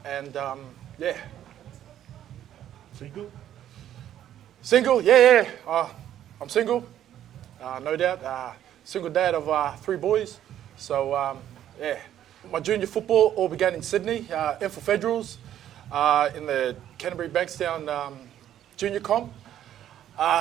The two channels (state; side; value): quieter; left; 11.2 dB